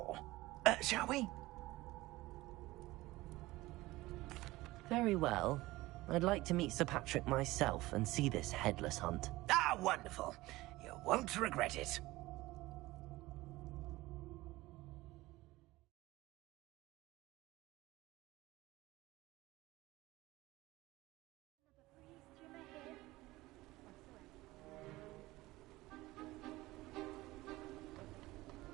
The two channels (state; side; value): quieter; left; 18.9 dB